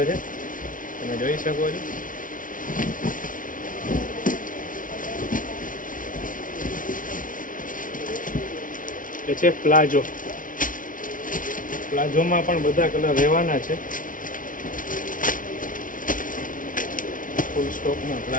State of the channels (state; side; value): late; right; 0.38 ms